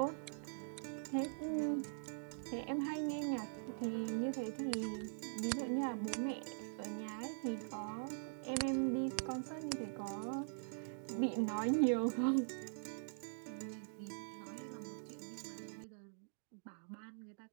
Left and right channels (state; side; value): silent; left; digital silence